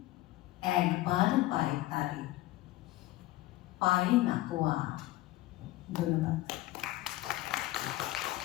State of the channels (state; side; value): quieter; right; 16.9 dB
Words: একবার পায় তারে, পায় না কো আর। ধন্যবাদ।